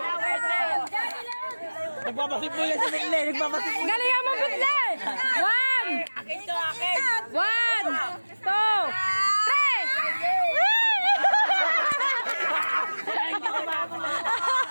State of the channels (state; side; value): inverted; both; correlation -1.00